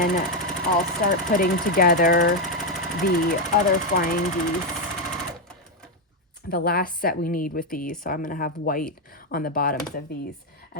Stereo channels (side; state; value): both; normal; correlation 0.04